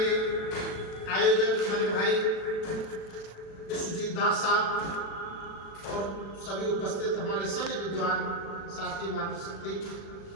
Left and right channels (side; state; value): right; late; 36 ms